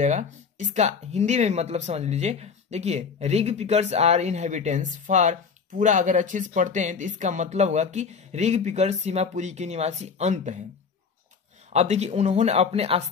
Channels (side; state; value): right; quieter; 5.8 dB